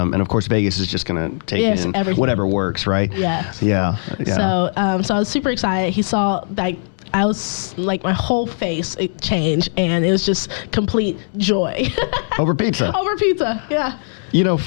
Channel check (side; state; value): right; silent; digital silence